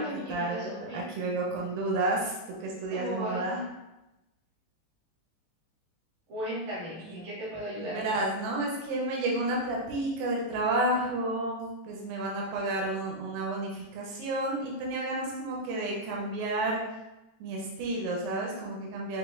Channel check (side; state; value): left; late; 18 ms